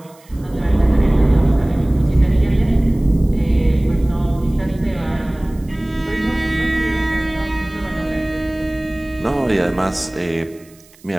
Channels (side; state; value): right; noise; hiss, 28 dB below the sound